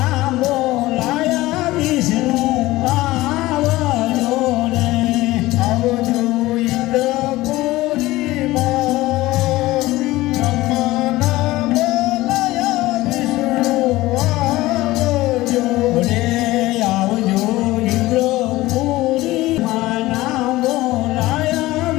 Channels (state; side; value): quieter; right; 18.2 dB